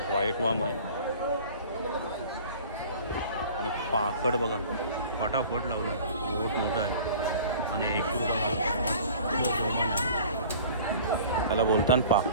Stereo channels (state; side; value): inverted; both; correlation -0.45